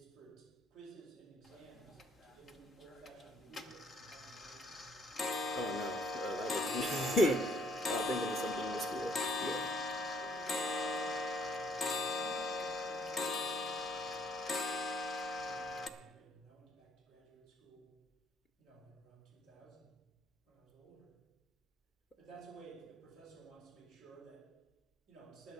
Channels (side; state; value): both; normal; correlation 0.65